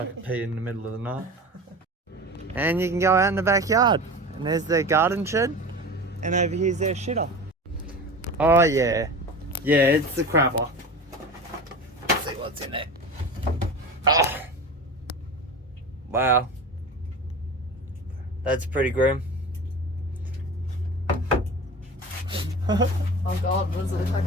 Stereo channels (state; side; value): normal; both; correlation 0.33